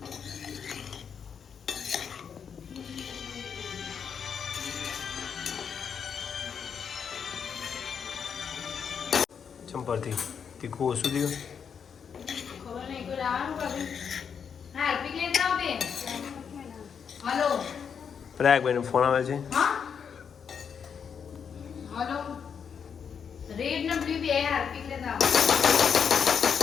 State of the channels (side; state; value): right; quieter; 7.0 dB